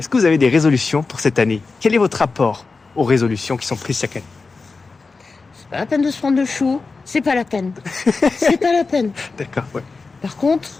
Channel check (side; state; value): right; quieter; 4.2 dB